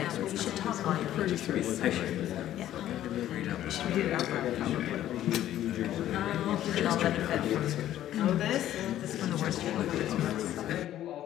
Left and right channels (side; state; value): right; quieter; 12.5 dB